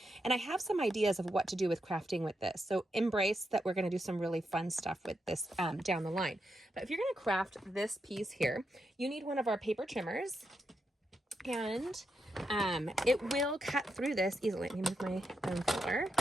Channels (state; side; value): normal; both; correlation 0.84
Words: And I have some ideas of what to do with crafting with this. So embrace that we're going to do some really fun stuff with this down the line. But if you're going to craft this piece here, you need one of our paper trimmers. And it will cut through this easily. Let me move my bone filler.